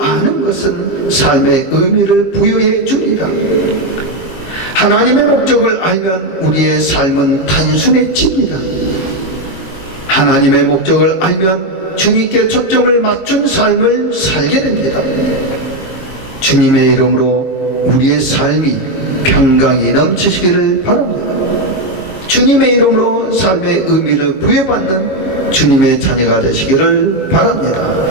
아는 것은 삶의 의미를 부여해 주리라. 하나님의 목적을 알면 우리의 삶은 단순해집니다. 하나님의 목적을 알면 주님께 초점을 맞춘 삶을 살게 됩니다. 주님의 이름으로 우리의 삶이 평강이 넘치시기를 바랍니다. 주님의 이름으로 삶의 의미를 부여받는 주님의 자녀가 되시기를 바랍니다.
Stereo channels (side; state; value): right; late; 22 ms